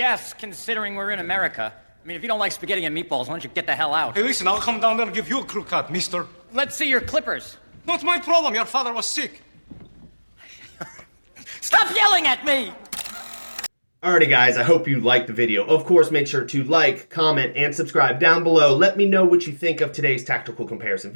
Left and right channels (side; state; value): both; inverted; correlation -1.00